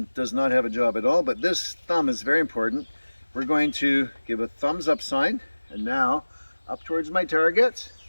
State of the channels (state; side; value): inverted; both; correlation -1.00